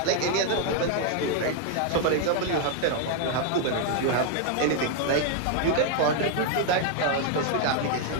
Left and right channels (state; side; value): different; both; correlation 0.00